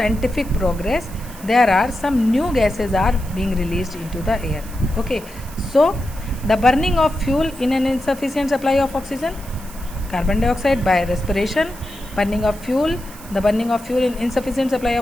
progress, there are some new gases are being released into the air. Okay, so the burning of fuel in an insufficient supply of oxygen, carbon dioxide. By respiration, burning of fuel, the burning of fuel in insufficient supply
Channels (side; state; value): right; noise; hiss, 18 dB below the sound